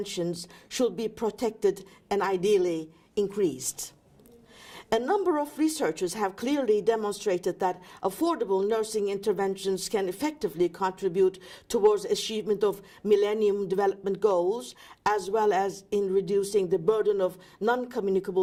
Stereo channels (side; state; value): both; identical; correlation 1.00